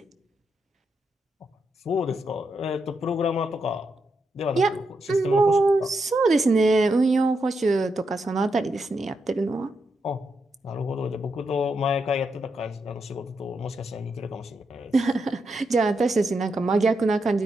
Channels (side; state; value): both; normal; correlation 0.83